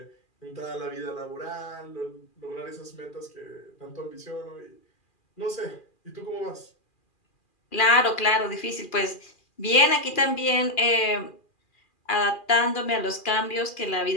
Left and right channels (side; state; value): right; late; 2.4 ms